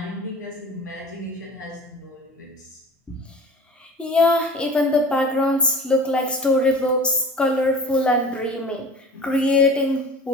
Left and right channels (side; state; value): both; normal; correlation 0.41